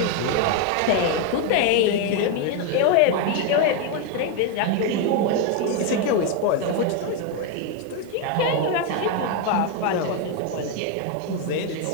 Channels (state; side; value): different; both; correlation 0.01